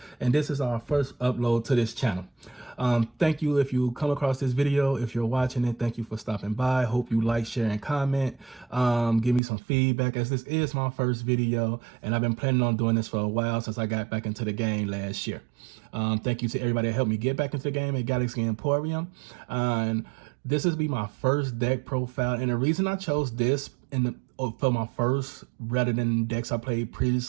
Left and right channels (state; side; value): drops out; left; at 9.4 s